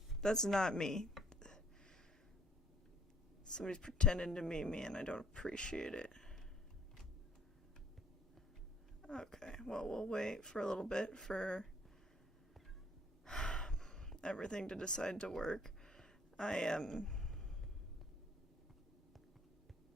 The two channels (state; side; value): normal; both; correlation 0.59